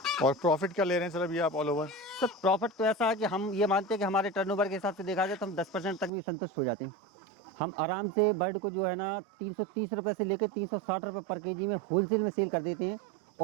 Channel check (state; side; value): drops out; left; at 6.1 s